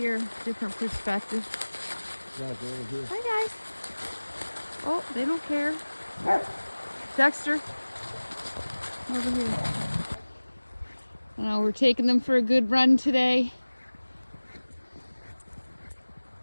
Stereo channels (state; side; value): inverted; both; correlation -1.00